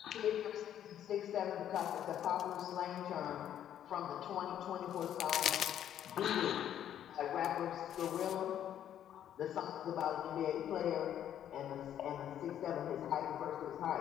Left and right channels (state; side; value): quieter; right; 10.4 dB